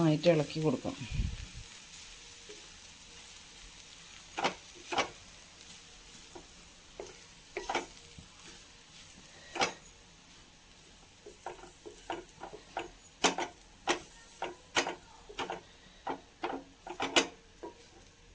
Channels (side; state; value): both; identical; correlation 1.00